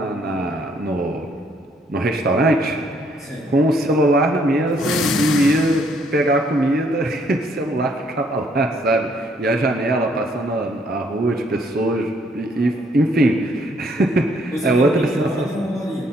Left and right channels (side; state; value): both; normal; correlation 0.67